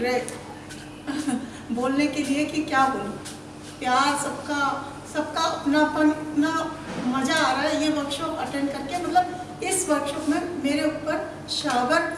रहे बोलने के लिए कि क्या बोलूं। प्यार सबका अपनापन, इतना मज़ा आ रहा है ये वर्कशॉप अटेंड करके। मतलब इस वर्कशॉप में मेरे ऊपर शावर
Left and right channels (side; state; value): both; identical; correlation 1.00